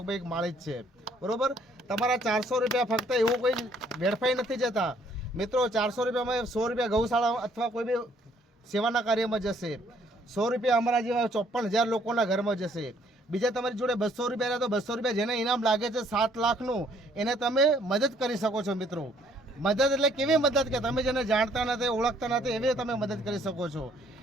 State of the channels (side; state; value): both; normal; correlation 0.64